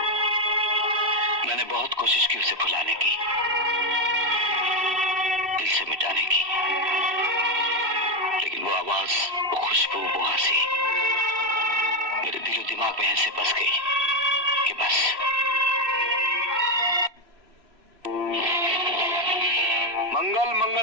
मैंने बहुत कोशिश की उसे भुलाने की, दिल से मिटाने की, लेकिन वो आवाज, वो खुशबू, वो हंसी मेरे दिलो दिमाग में ऐसे बस गई कि बस।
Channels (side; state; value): left; late; 3.0 ms